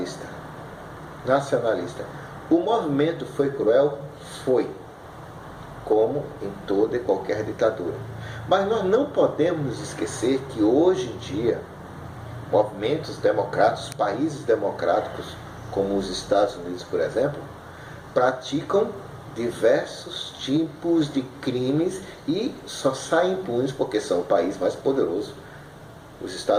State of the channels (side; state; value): both; identical; correlation 1.00